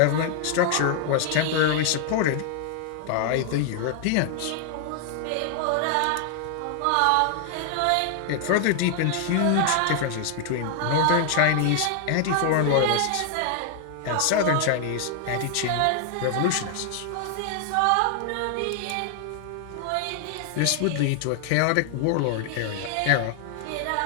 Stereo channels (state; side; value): different; both; correlation 0.00